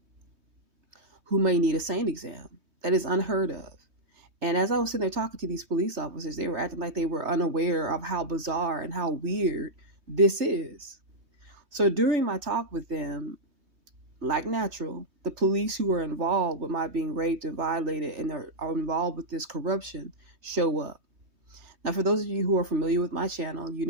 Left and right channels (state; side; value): late; left; 3.2 ms